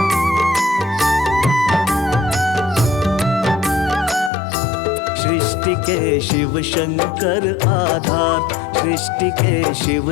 सृष्टि के शिव शंकर आधार, सृष्टि के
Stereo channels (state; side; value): drops out; right; at 4.3 s